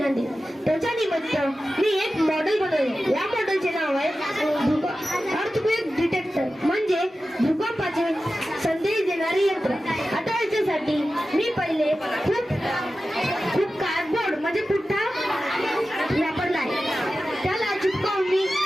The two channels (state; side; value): normal; both; correlation 0.94